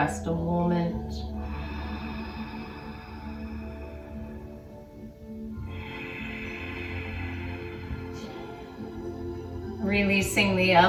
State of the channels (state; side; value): identical; both; correlation 1.00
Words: a moment. Releasing the